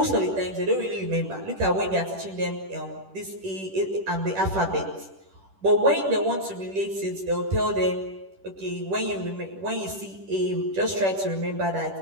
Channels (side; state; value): left; late; 10 ms